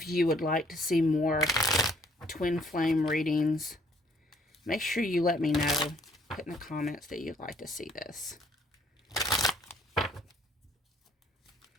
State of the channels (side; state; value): both; normal; correlation 0.63